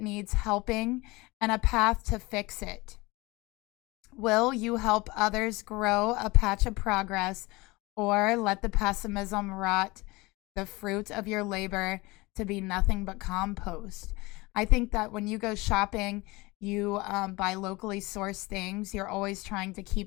helping and a path to fix it. Will you help others grow a patch of progress, or let the pessimism rot the fruit of your labor to be nothing but compost? I think that when you go shopping, you buy locally sourced things. You're always trying to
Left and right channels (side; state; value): right; quieter; 23.1 dB